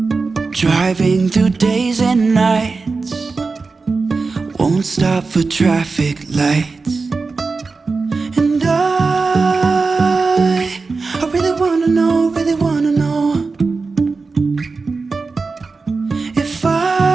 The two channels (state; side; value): quieter; left; 4.2 dB